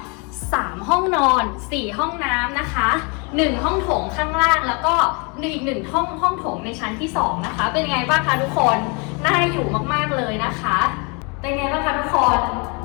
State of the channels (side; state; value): right; quieter; 32.4 dB